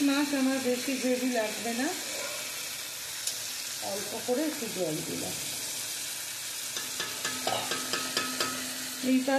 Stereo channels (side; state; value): both; identical; correlation 1.00